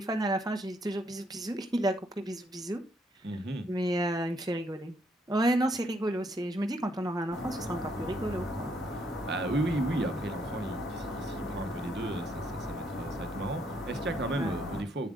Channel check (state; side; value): normal; both; correlation 0.72